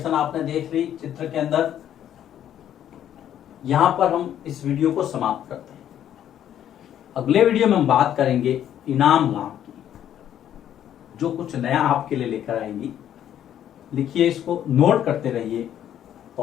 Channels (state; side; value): quieter; right; 10.6 dB